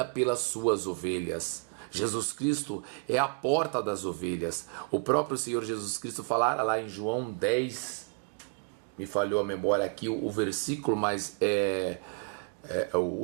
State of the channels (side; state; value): left; quieter; 36.8 dB